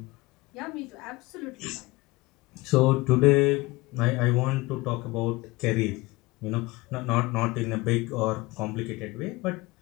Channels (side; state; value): right; quieter; 22.1 dB